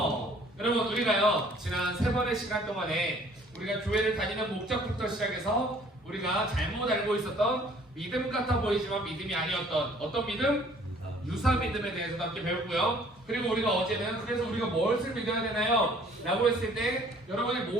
여러분, 우리가요 지난 3번의 시간 동안에 우리가 교회를 다니는 목적부터 시작해서 우리가 잘못 알고 있었던 믿음 같아 보이지만 믿음이 아니었던 어떤 믿음? 유사 믿음에 대해서도 함께 배웠고요. 그리고 우리가 어제는 그래서 우리가 무엇을 믿어야 되나요? 라고 했을 때 여러분이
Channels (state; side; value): normal; both; correlation 0.57